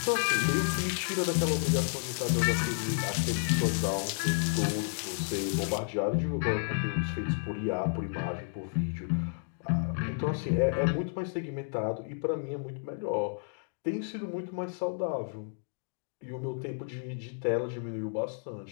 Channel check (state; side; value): silent; right; digital silence